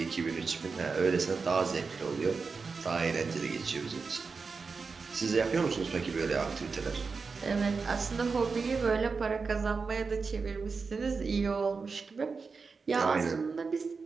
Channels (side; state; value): left; quieter; 4.8 dB